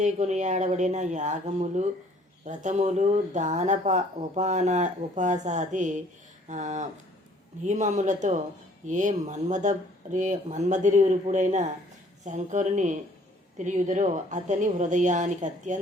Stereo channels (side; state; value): both; normal; correlation 0.58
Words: కొనియాడబడిన యాగములు, వ్రతములు, ఉపాసాది నియమములతో ఏ మన్మధురుపుడైన శంకరుని తిరియుదరో అతని హృదయానికి